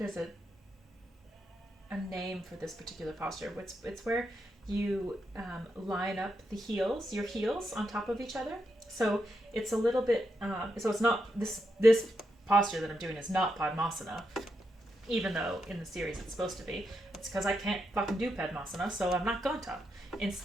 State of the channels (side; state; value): both; normal; correlation 0.83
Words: a name for this particular posture. It's where you line up your heels on top of each other. So it's a little bit. So it's not this posture that I'm doing is not Padmasana, even though in the series it's supposed to be. It's because I can't fucking do Padmasana, so I'm not going to.